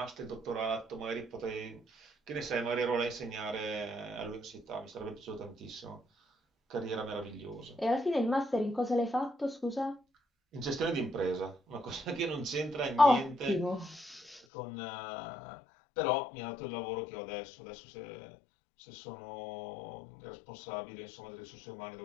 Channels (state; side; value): drops out; right; at 14.4 s